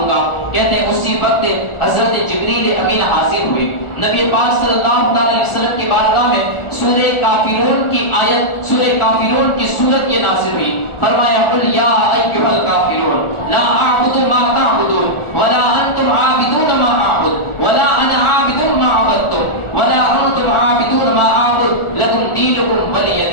گا۔ کہتے ہیں اسی وقت حضرت جبریل امین حاضر ہوئے، نبی پاک صلی اللہ علیہ وسلم کی بارگاہ میں سورہ کافرون کی آیت، سورہ کافرون کی سورت یہ نازل ہوئی۔ فرمایا قل یا ایھا الکافرون لا اعبد ما تعبدون ولا انتم عابدون ما اعبد ولا انا عابد ما عبدتم ولا انتم عابدون ما اعبد لکم دینکم ولی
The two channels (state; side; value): late; right; 1.4 ms